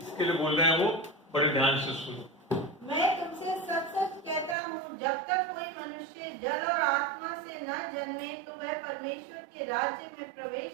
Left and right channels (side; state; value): left; drops out; at 4.5 s